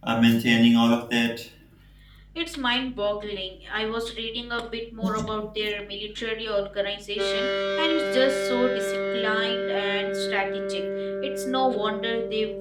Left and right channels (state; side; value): identical; both; correlation 1.00